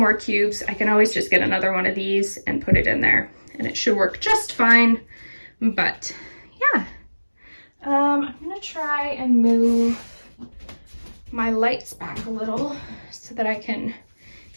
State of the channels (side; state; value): both; inverted; correlation -1.00